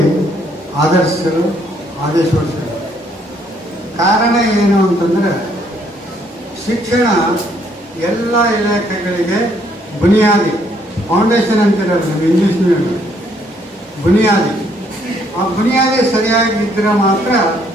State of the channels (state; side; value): normal; both; correlation 0.68